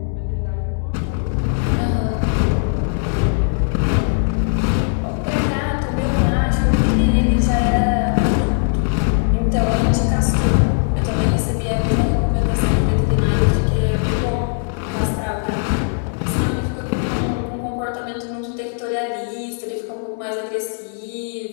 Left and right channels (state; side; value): silent; right; 66 dB below the other